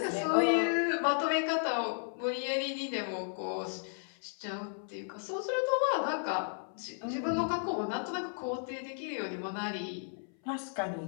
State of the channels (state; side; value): silent; right; 55 dB below the other